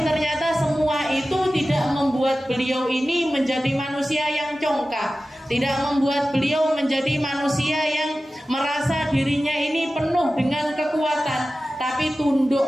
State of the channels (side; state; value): both; normal; correlation 0.95